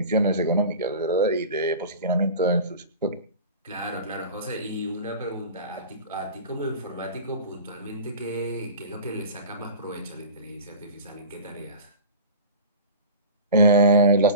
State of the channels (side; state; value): both; inverted; correlation -0.35